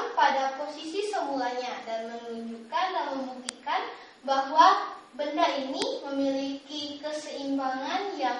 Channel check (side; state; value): both; identical; correlation 1.00